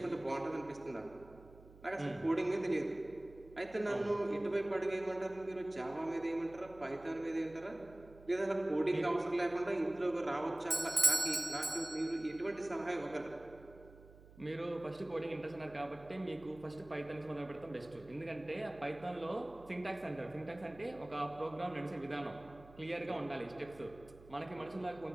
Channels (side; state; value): right; noise; hum, 21 dB below the sound